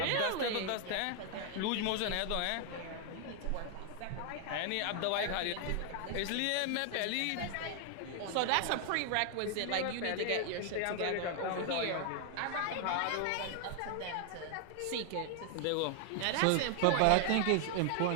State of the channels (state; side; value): different; both; correlation 0.00